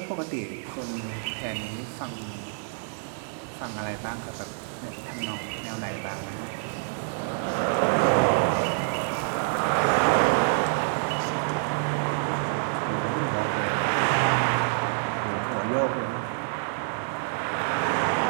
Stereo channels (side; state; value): left; silent; digital silence